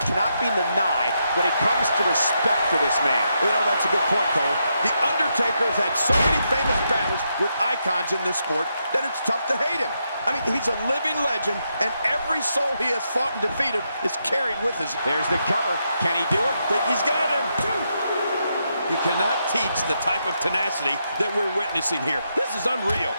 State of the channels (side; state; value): both; inverted; correlation -0.81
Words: cannot be denied when it comes to respect for this man. You know, that's a good point, Cole. The Undertaker has had so many famous battles with icons in this sport that it's tough to hate him. I mean, he's a living legend, and every soul he has fought and defeated is carried with us. There's the cover. Can he do it? Think he's got him. You cannot teach the type of tenacity that we're witnessing here. This is unreal.